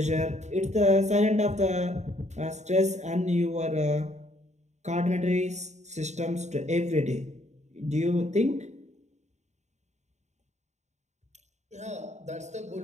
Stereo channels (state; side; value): late; left; 0.33 ms